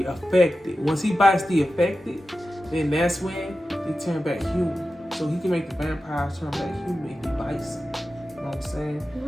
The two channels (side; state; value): both; normal; correlation 0.93